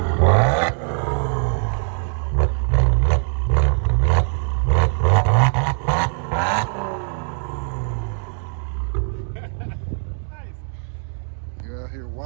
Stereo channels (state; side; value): silent; left; 65 dB below the other